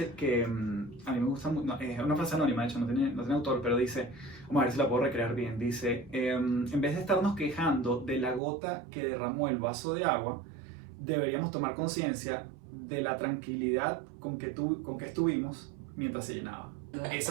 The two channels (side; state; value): left; drops out; at 8.4 s